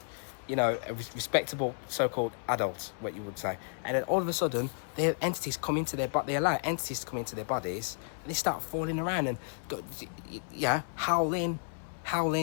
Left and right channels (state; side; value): silent; right; 55 dB below the other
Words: respectable so-called adults, what you would say. And then all of a sudden, they allow entities to come into their bodies, and they start falling around and howling,